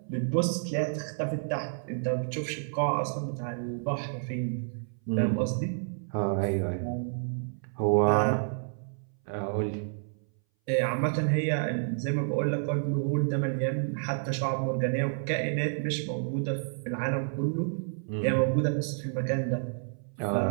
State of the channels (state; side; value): silent; left; 58 dB below the other